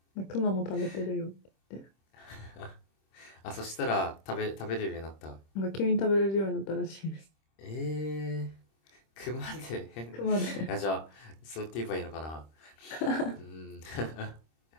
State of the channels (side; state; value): right; late; 26 ms